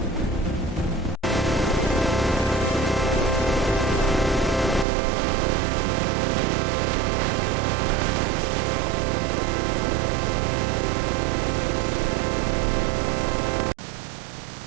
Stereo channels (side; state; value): left; drops out; at 4.9 s